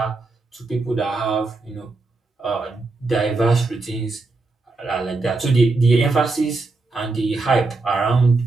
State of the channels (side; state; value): left; quieter; 3.6 dB